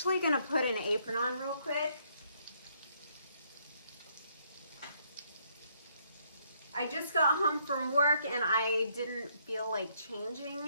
gonna put an apron on real quick. I just got home from work and I didn't feel like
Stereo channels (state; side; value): inverted; both; correlation -0.70